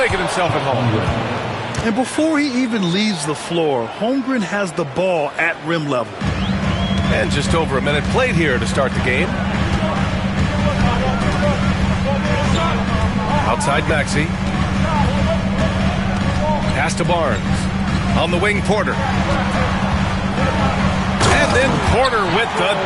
himself at home. And before he even leaves the floor, Holmgren has the ball at rim level. And just over a minute played here to start the game. Outside Maxey. Pass to Barnes. On the wing, Porter. And then Porter with the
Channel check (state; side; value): identical; both; correlation 1.00